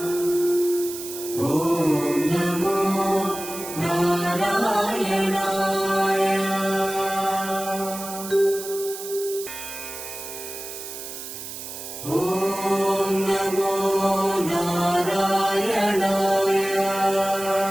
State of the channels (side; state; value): right; noise; hiss, 10 dB below the sound